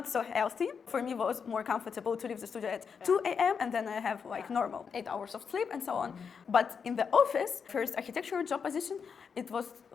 so healthy. For me, it was more comfortable to leave the studio at 2 a.m. and then I have like normal 8 hours of sleep and so on. But in the office, first architectural job position, it was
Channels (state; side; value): quieter; right; 6.3 dB